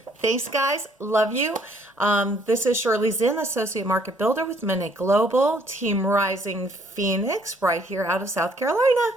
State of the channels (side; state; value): both; normal; correlation 0.63